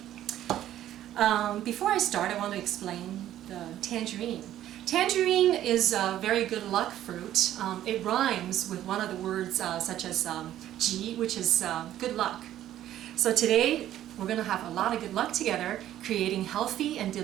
Before I start, I want to explain the tangerine. Tangerine is a very good luck fruit. It rhymes with one of the words such as ji, which is good luck. So today we're going to have a lot of good luck together, creating healthy and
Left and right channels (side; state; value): left; quieter; 12.4 dB